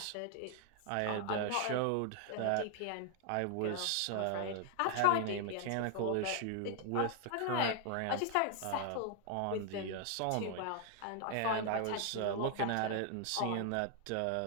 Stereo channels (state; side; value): different; both; correlation 0.00